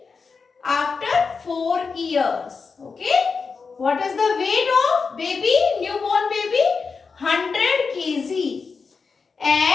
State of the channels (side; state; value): right; quieter; 5.0 dB